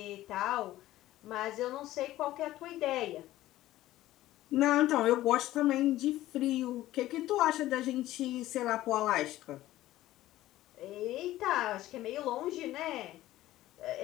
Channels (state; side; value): quieter; right; 15.2 dB